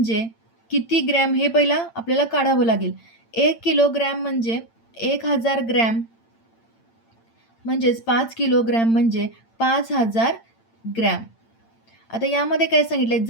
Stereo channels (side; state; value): right; late; 8.8 ms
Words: किती ग्रॅम हे पहिला आपल्याला काढावं लागेल. 1 किलोग्रॅम म्हणजे 1000 ग्रॅम, म्हणजेच 5 किलोग्रॅम म्हणजे 5000 ग्रॅम. आता यामध्ये काय सांगितले?